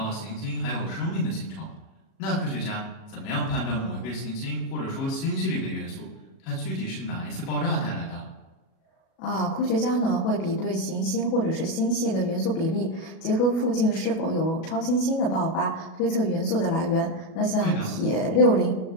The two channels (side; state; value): right; late; 37 ms